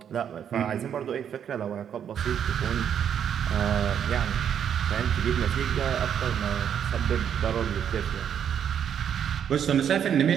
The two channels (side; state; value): left; quieter; 8.7 dB